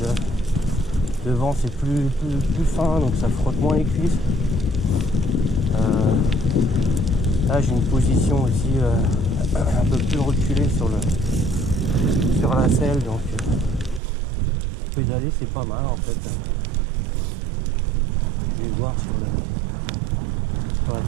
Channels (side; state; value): left; drops out; at 14.0 s